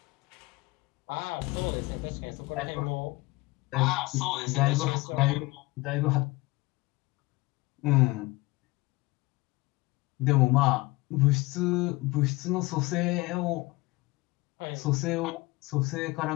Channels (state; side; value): quieter; right; 22.3 dB